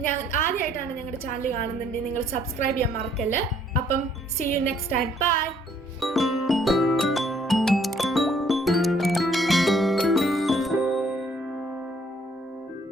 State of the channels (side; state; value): both; normal; correlation 0.64